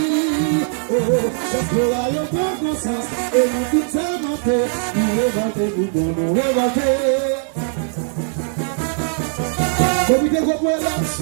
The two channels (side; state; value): left; silent; 62 dB below the other